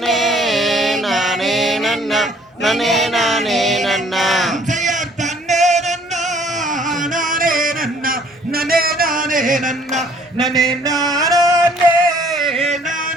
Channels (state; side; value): normal; both; correlation 0.59